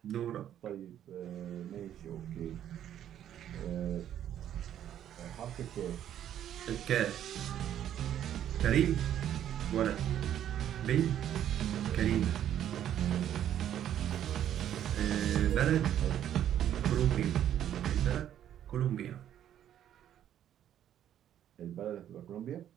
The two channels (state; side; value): quieter; left; 10.7 dB